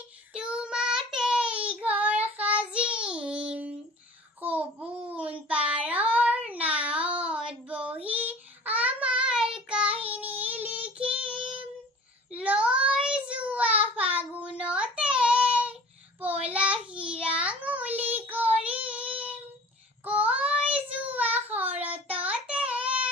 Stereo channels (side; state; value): both; normal; correlation 0.44